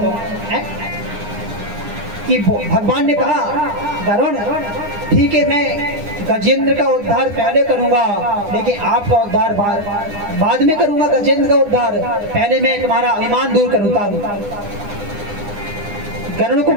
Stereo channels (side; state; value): left; late; 9.8 ms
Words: है कि भगवान ने कहा गरुड़ ठीक है मैं गजेंद्र का उद्धार पहले करूंगा, लेकिन आपका उद्धार बाद में करूंगा। गजेंद्र का उद्धार पहले मैं तुम्हारा अभिमान दूर करूंगा। गरुड़ को